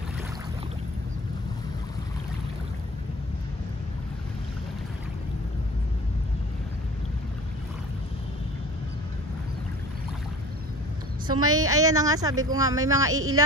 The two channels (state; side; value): normal; both; correlation 0.43